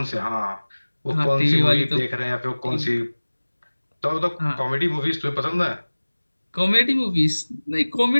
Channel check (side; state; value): both; inverted; correlation -1.00